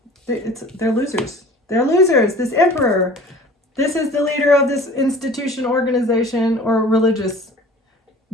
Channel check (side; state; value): both; normal; correlation 0.45